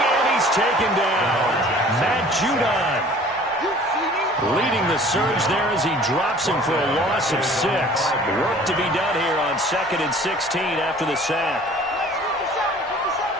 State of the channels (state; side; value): normal; both; correlation 0.49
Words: and he's taken down. Matt Judon leading the surge there as he drops him for a loss of 6. Work to be done here on 2nd and 16 after the sack.